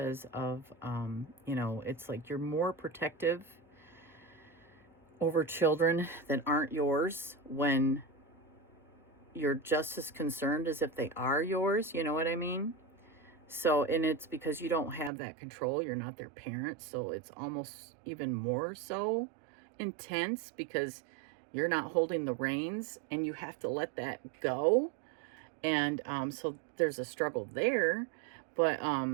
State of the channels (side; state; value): left; drops out; at 15.1 s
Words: of, it's like you're more protective over children that aren't yours when you're just as concerned as if they are yours. You know what I mean? So, and it's because you don't have that control. You're not their parent. So it's almost even more so intense, because you're not holding the reins and you have to let that go. And so there's a struggle there. But